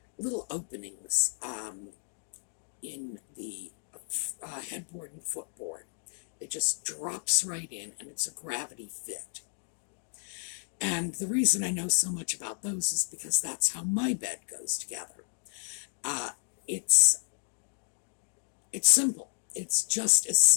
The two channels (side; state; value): right; silent; 57 dB below the other